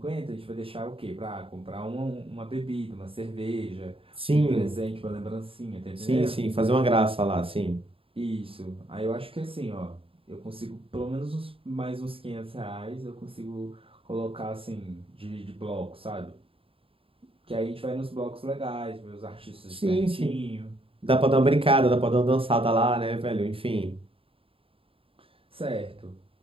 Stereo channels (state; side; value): late; left; 0.27 ms